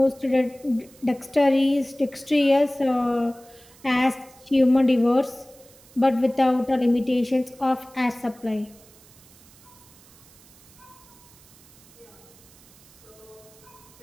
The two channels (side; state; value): right; noise; hiss, 25 dB below the sound